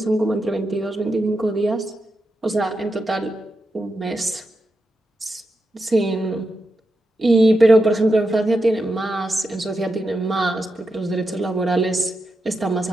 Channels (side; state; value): both; normal; correlation 0.87